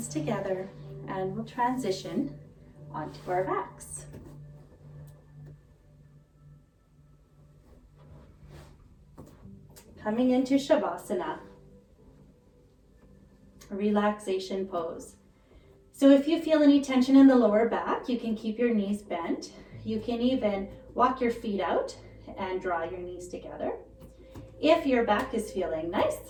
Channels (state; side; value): identical; both; correlation 1.00